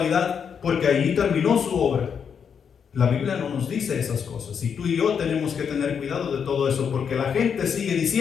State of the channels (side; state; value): right; quieter; 7.1 dB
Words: porque allí terminó su obra. La Biblia no nos dice esas cosas, y tú y yo tenemos que tener cuidado de todo eso, porque la gente sigue